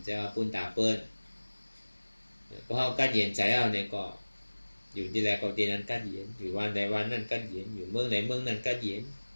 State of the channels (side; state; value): both; inverted; correlation -1.00